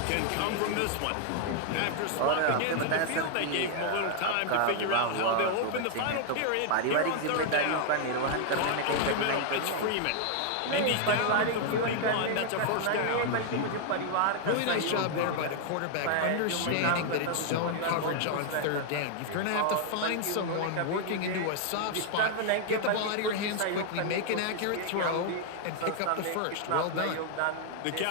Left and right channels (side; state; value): both; different; correlation 0.00